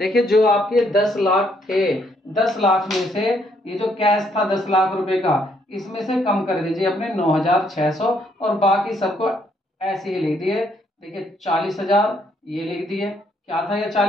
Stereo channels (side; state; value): both; normal; correlation 0.70